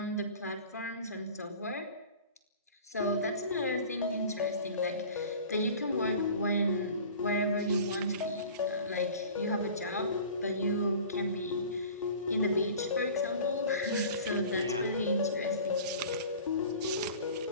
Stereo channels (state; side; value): inverted; both; correlation -0.42